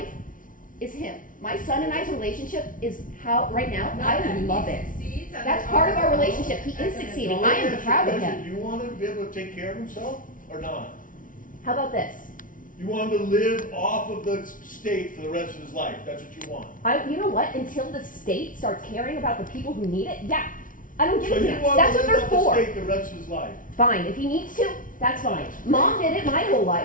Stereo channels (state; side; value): late; right; 0.39 ms